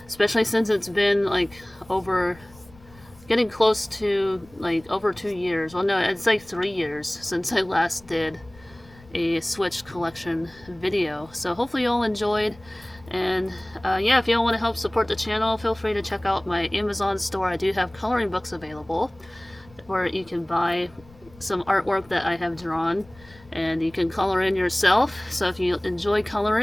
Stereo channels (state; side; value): noise; left; rumble, 24 dB below the sound